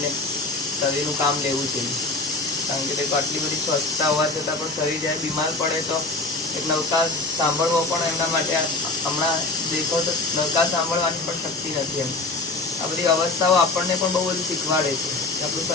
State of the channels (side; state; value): right; quieter; 3.2 dB